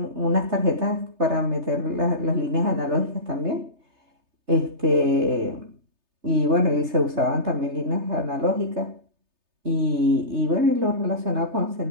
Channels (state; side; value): late; left; 3.3 ms